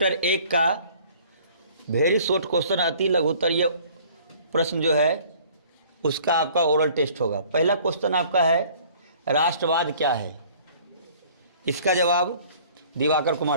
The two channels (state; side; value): inverted; both; correlation -0.53